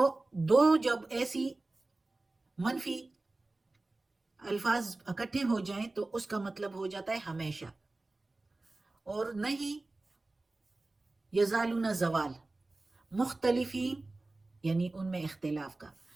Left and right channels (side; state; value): left; quieter; 3.1 dB